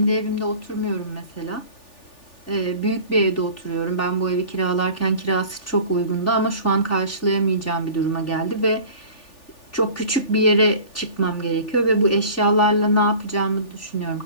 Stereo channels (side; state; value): right; late; 3.4 ms